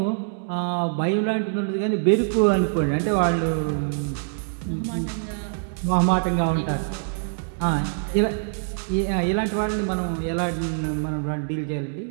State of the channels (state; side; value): silent; left; 62 dB below the other